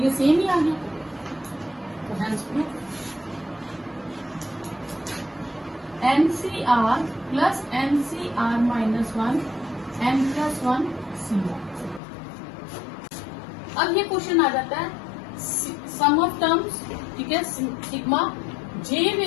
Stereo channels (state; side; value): drops out; right; at 12.0 s